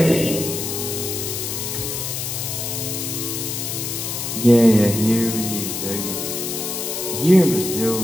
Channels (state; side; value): noise; left; hiss, 4 dB below the sound